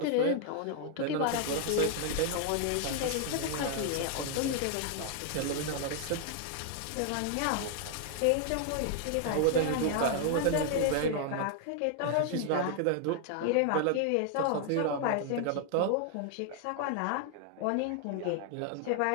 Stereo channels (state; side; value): different; both; correlation 0.00